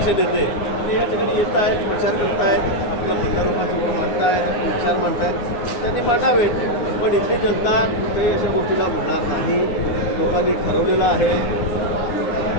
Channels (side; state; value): right; late; 9.6 ms